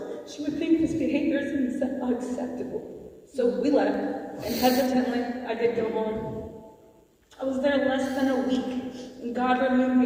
she would think this behavior is unacceptable. So we left, and hesitantly, I did go home. I was there less than a week, and God removed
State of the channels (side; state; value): both; identical; correlation 1.00